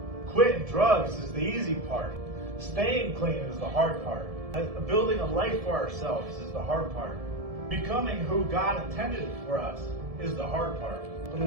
Quitting drugs is the easy part. Staying clean is the hard part. Building a life for ourselves is the hard part. Becoming who God intended for us is the hard part. But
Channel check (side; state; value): left; late; 1.7 ms